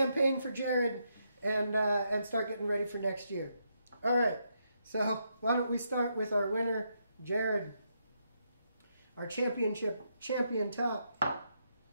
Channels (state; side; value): inverted; both; correlation -0.79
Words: for Jared and start getting ready for next year. All right. So why don't we start with our winner, Jared, our champion top.